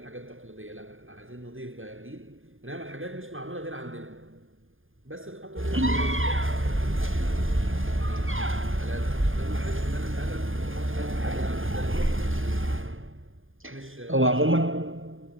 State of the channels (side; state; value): left; late; 0.59 ms